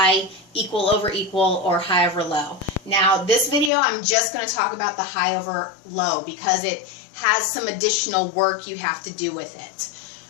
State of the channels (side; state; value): right; drops out; at 3.7 s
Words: equal over equal, or high over low. Now this video I'm just going to talk about the high over low because it has some additional work you have to do with it.